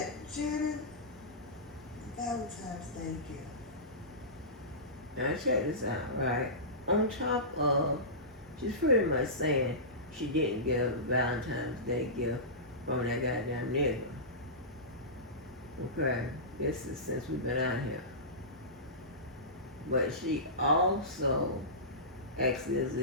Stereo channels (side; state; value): both; normal; correlation -0.20